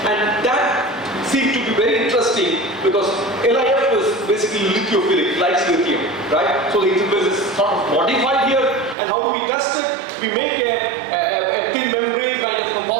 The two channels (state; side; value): drops out; left; at 9.0 s